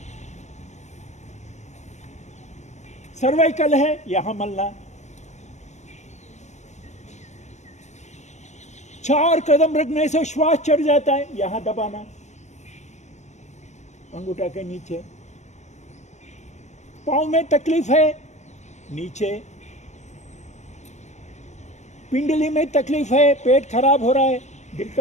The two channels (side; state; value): right; late; 0.33 ms